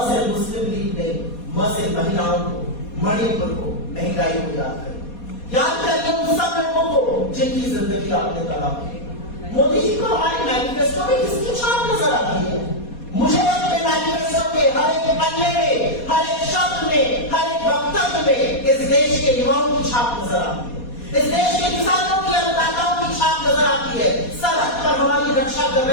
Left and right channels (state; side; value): late; right; 4.2 ms